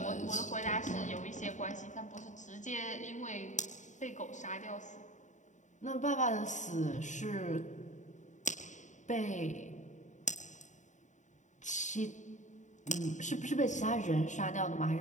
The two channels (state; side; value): late; right; 0.35 ms